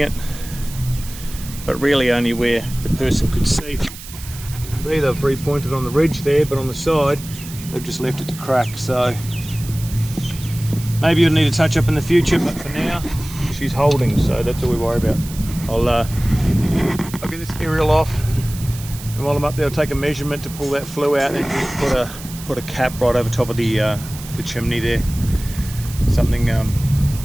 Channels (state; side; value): noise; right; hiss, 14 dB below the sound